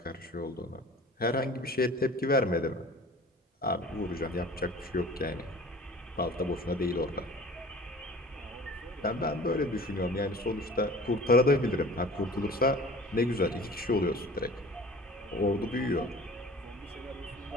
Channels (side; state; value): both; normal; correlation 0.44